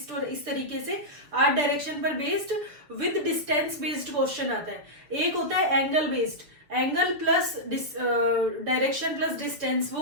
और इस तरीके से 8 डायरेक्शन पर based with distance based question आता है। एक होता है angle based, angle plus direction plus distance,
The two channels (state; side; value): late; left; 6.6 ms